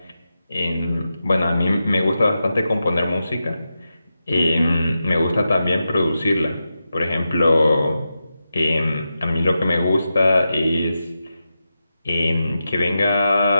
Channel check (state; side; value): inverted; both; correlation -0.90